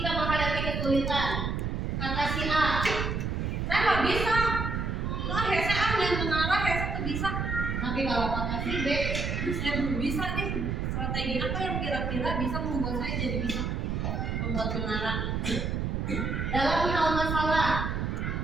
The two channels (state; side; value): noise; right; rumble, 1 dB below the sound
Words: menghadapi kesulitan, kata si A, saya nggak bisa. Nah, saya ambil mengarah, saya tuh bisa. Tapi kalau kata si B, saya belum bisa nih. Strategi apa yang kira-kira bisa membuat saya jadi bisa membuat mengarah? Dalam hal masalah,